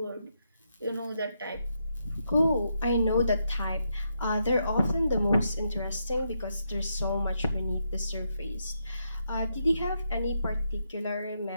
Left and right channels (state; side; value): inverted; both; correlation -0.81